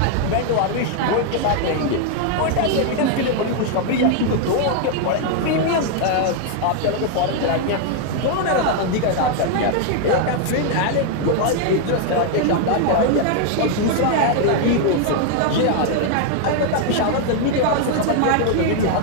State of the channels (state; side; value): different; both; correlation 0.00